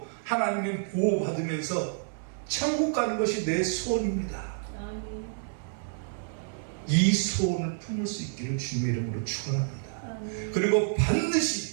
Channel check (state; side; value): silent; left; digital silence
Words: 하나님의 보호받으면서 천국 가는 것이 내 소원입니다. 아멘. 이 소원을 품을 수 있기를 주님의 이름으로 축원합니다. 아멘. 그리고